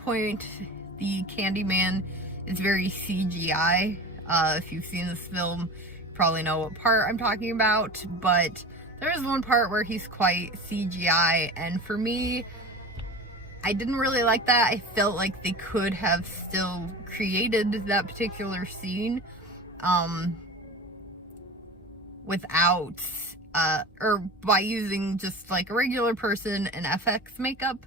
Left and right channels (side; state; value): both; normal; correlation 0.32